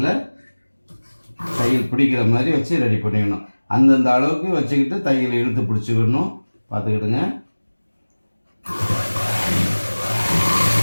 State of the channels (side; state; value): both; inverted; correlation -1.00